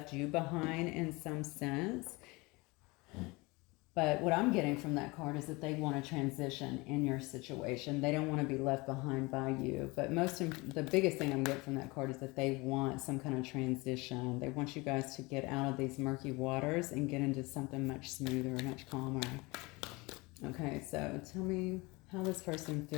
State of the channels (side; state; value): right; quieter; 24.5 dB